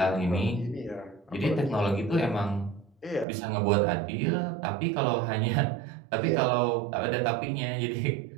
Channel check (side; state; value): left; drops out; at 3.2 s